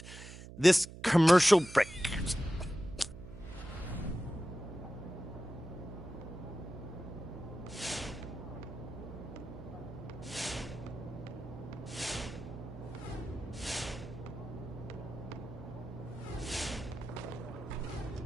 this commercial break.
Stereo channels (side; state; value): right; noise; hum, 13 dB below the sound